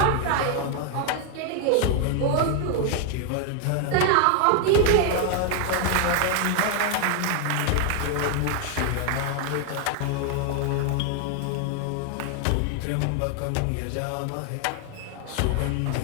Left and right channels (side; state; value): both; different; correlation 0.00